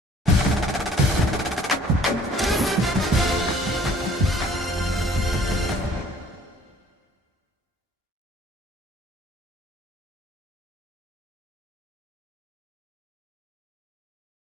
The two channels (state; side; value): normal; both; correlation 0.55